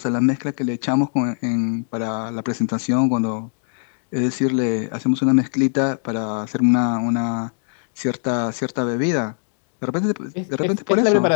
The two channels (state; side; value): silent; right; digital silence